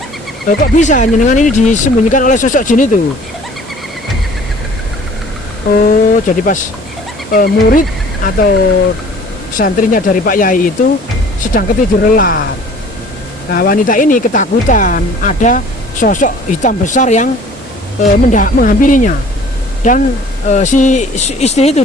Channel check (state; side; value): normal; both; correlation 0.50